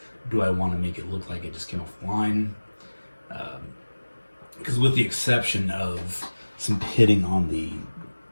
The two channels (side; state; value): both; inverted; correlation -1.00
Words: Do I want to make it look like it just came off the line? Because with the exception of some pitting on the